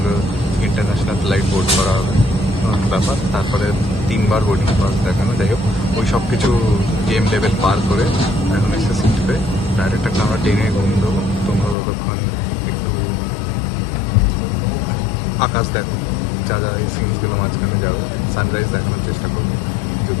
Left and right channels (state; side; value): drops out; right; at 11.8 s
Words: ইন্টারন্যাশনাল ফ্লাইট বোর্ড করা হবে ব্যাপার। তারপরে 3বার বোর্ডিং পাস দেখানো, যাই হোক ওই সব কিছু গেম লেভেল পার করে এখন এসে সিট পেয়ে ডাইরেক্ট একটা আমরা ট্রেনে ঘুম দেবো। তোমরা ততক্ষণ একটু আকাশ দেখো, যা যা এই সিনসগুলো মাঝখানে যাবে, সানরাইজ দেখানোর চেষ্টা করবো